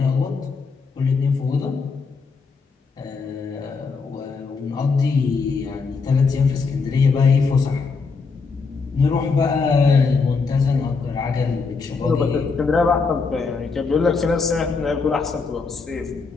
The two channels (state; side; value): quieter; right; 4.7 dB